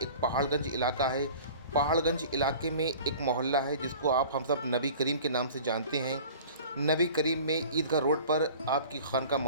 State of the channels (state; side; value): inverted; both; correlation -0.43